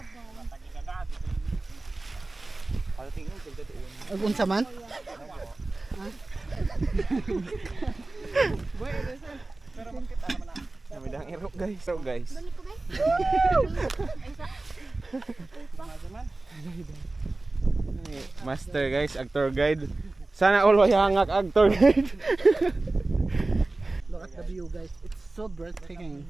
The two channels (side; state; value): left; quieter; 3.1 dB